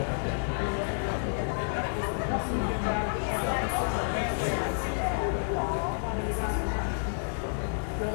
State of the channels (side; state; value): right; silent; 56 dB below the other